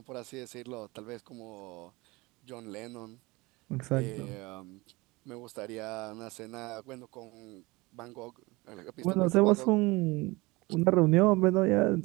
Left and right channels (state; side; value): quieter; left; 23.2 dB